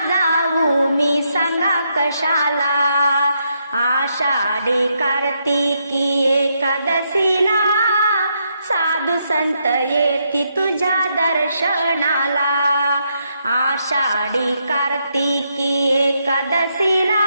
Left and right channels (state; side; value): inverted; both; correlation -0.78